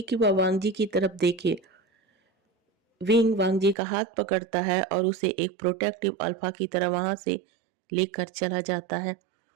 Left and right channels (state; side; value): drops out; left; at 3.8 s